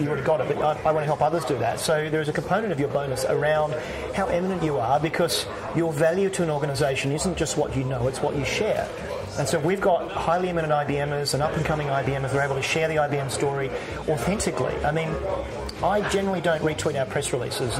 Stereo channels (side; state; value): both; identical; correlation 1.00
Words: got it, but I want to help others do that. So there's a component of your bonus around how eminent you are, because your value to an organisation isn't just what you know, it's what you share. And so we've got highly eminent IBMers and up-and-coming IBMers who are able to share the IBM story authentically. I mean, I generally don't retweet our press releases.